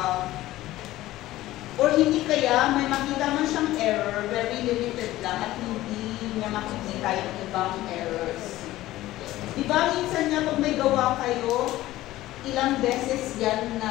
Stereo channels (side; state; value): right; quieter; 16.0 dB